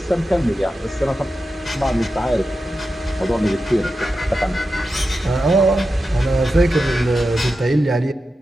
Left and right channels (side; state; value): both; normal; correlation 0.90